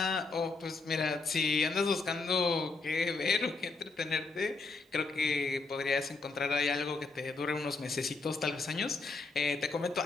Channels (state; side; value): quieter; right; 3.8 dB